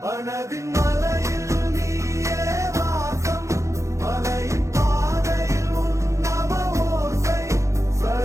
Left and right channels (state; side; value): late; left; 0.15 ms